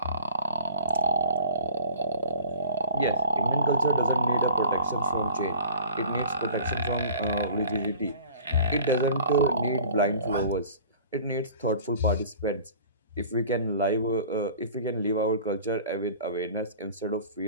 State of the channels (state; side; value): inverted; both; correlation -0.45